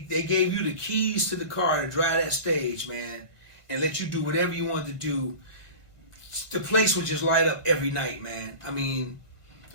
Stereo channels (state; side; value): late; right; 1.5 ms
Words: gave you the keys to the car to drive that stage, man, and let you do whatever you wanted to do. The place would just light up every night, man. I mean,